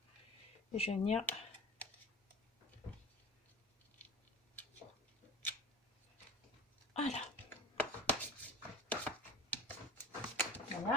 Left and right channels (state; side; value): normal; both; correlation 0.35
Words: Et je vais venir... Voilà.